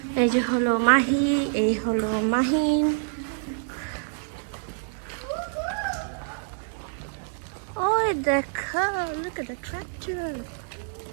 এই যে হলো মাহি, এই হলো মাহিন। ওই দেখো, look at the tractor.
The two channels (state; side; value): silent; left; digital silence